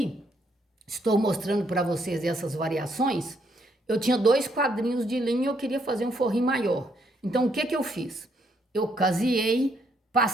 estou mostrando para vocês essas variações. Eu tinha 2 quadrinhos de linha e eu queria fazer um forrinho maior. Então, o que que eu fiz? Eu caseei,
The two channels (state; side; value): normal; both; correlation 0.72